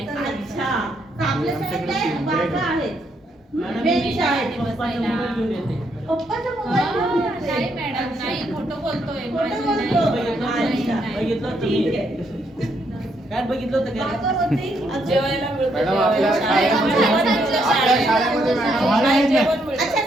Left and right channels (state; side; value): normal; both; correlation 0.75